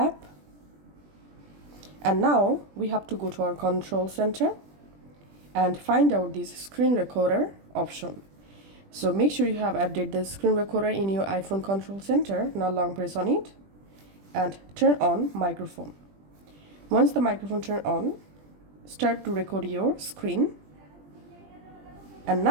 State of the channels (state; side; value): late; left; 20 ms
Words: and now we have to go to our control center and find out this screen recorder option. So make sure you have added the screen recorder in your iPhone control center. Now long press on it and turn on microphone. Once the microphone turn on, start to record your screen. And